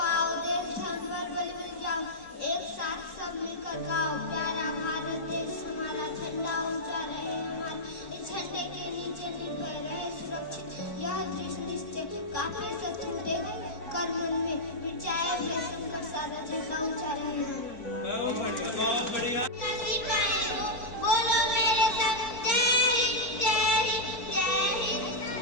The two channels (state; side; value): late; right; 4.3 ms